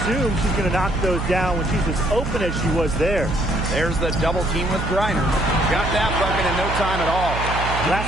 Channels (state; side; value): noise; right; hum, 5 dB below the sound